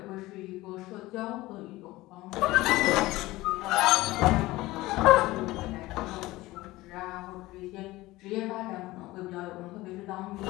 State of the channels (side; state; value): right; quieter; 18.8 dB